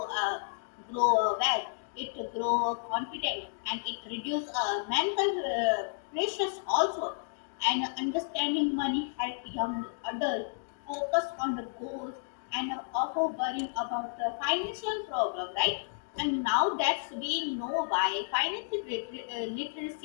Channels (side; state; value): right; silent; digital silence